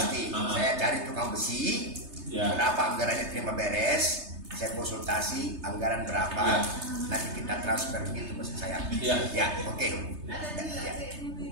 Saya cari tukang besi, berapa anggarannya terima beres, saya konsultasi anggaran berapa, nanti kita transfer gitu maksud saya. Ya, oke.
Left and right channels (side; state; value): left; late; 3.3 ms